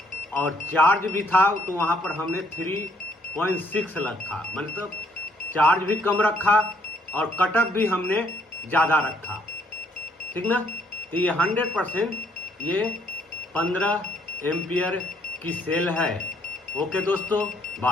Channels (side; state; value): both; normal; correlation 0.68